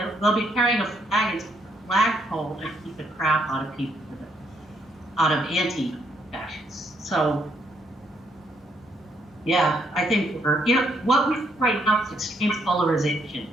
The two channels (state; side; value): normal; both; correlation 0.73